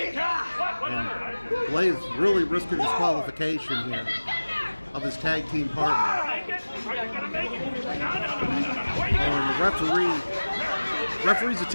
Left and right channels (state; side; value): inverted; both; correlation -1.00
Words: and Blaze really risking disqualification here of his tag team partner. And the referee's